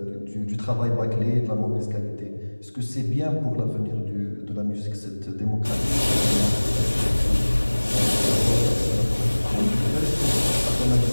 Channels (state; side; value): inverted; both; correlation -1.00